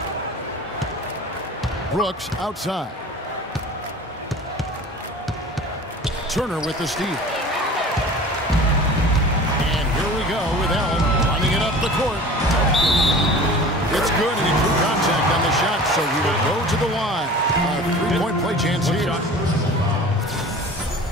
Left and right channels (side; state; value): both; normal; correlation 0.41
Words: Brooks outside. Turner with the steal. And here we go with Allen running it up the court. It's good, and he drew contact on the shot, so he will go to the line. A three-point play chance here.